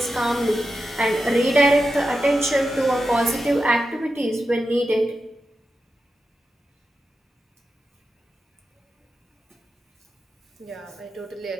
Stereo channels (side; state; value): both; normal; correlation 0.90